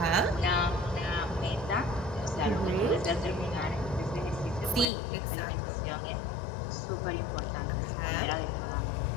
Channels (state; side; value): drops out; right; at 4.9 s